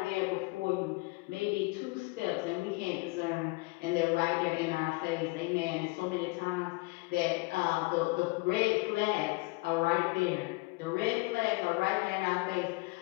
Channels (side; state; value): right; quieter; 25.4 dB